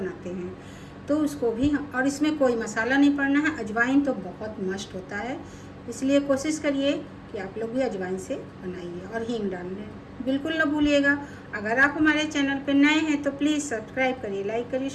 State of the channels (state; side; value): identical; both; correlation 1.00